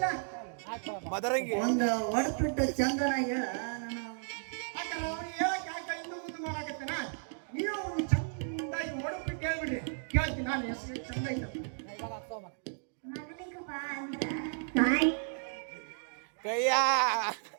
ಒಂದು ಹೊಡ್ಬಿಟ್ಟು ಚಂದನ ಹೇಳ. ನಾನು ಯಾಕಂದ್ರೆ ಅವ್ನು ಹೇಳಕ್ ಯಾಕೆ ಇನ್ನೂ ಮುಂದೆ ಮಾಡಾಕತ್ತೇನ, ನೀವು ಚಂದಾಗಿ ಹೊಡ್ಬಿಟ್ಟು ಹೇಳ್ಬಿಡ್ರಿ, ಕೇಳ್ತೀನಿ ನಾನು ಹೆಸರು ಚಂದ ಐತ. ಮಗನಿಗೆ ಬಾ ಅಂತ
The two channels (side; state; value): left; silent; digital silence